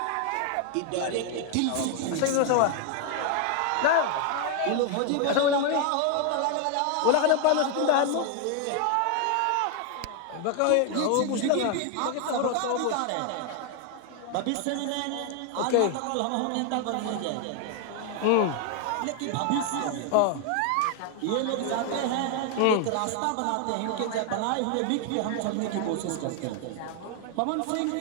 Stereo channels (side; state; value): both; different; correlation 0.01